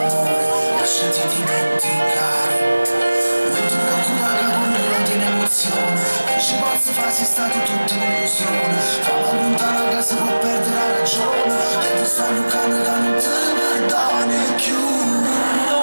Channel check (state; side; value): inverted; both; correlation -1.00